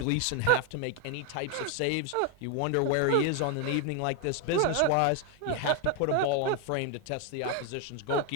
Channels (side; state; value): both; different; correlation 0.01